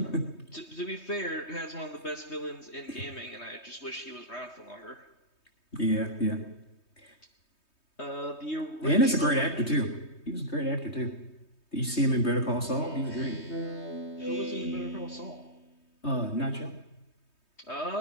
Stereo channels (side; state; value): right; late; 3.2 ms